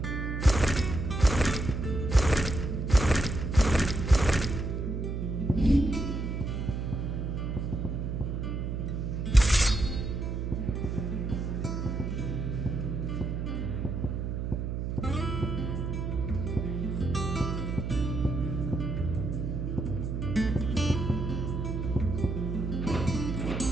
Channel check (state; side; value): noise; right; hum, 2 dB below the sound